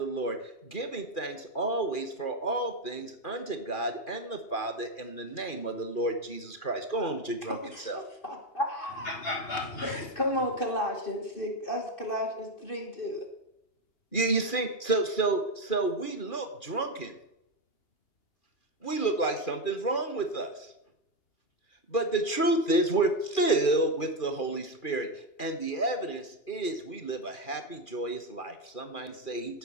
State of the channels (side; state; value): right; late; 2.4 ms